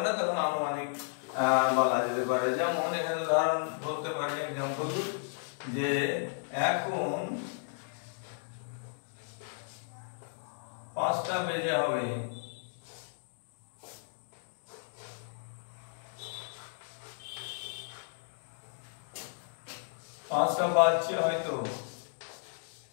না, তখন আনুমানিক বলা যেতে পারে। যেমন এখানে উদাহরণ বলতে পারি, এক্সাম্পল, যে এখন 5টা বেজে হবে, পাঁচটা বাজছে হয়তো,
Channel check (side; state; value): right; silent; digital silence